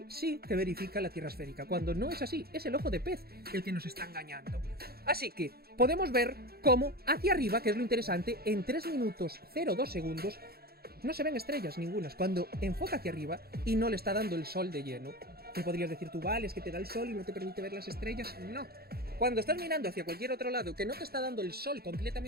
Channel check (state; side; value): late; left; 0.45 ms